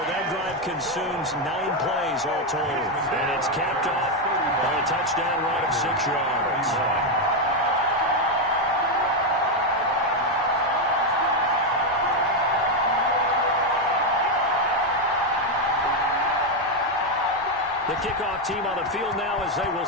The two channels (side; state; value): both; normal; correlation 0.05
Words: drive consumes 9 plays all told. And it's capped off by a touchdown run of 6 yards. The kickoff team on the field now as they will